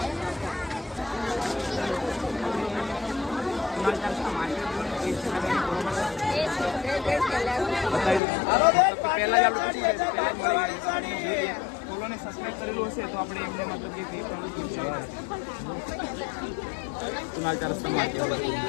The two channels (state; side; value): drops out; right; at 8.2 s